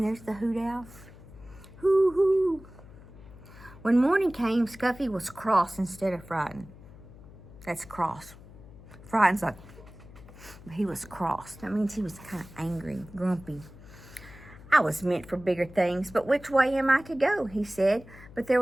there's the hoot owl. Hoo, hoo. When morning came, Scuffy was cross instead of frightened. That's cross. Frightened's like, he was cross. That means he was kind of angry, grumpy. I was meant for bigger things, but which way am I to go? He said. But there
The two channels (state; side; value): noise; left; hum, 19 dB below the sound